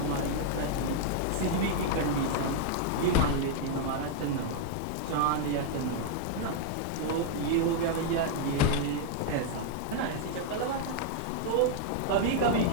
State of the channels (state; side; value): different; both; correlation 0.00